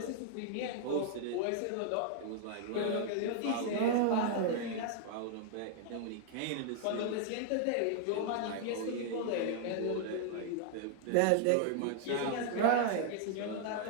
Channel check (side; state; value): both; different; correlation -0.01